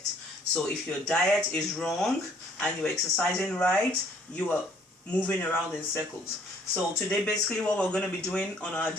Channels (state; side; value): normal; both; correlation 0.61